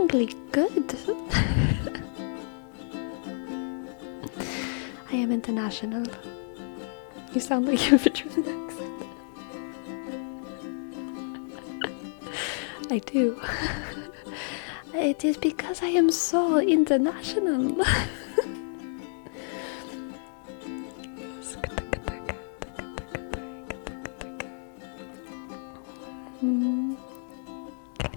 good. I am international. You sound like you have a German accent. I do. It is because I am so international.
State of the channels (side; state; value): right; silent; 58 dB below the other